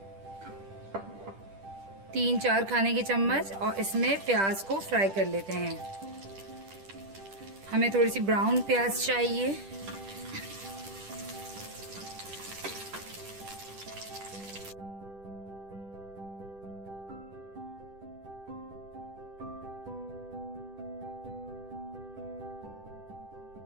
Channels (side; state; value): left; late; 10 ms